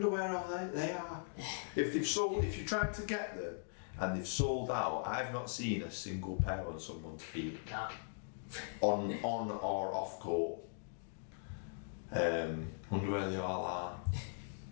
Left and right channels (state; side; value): silent; right; digital silence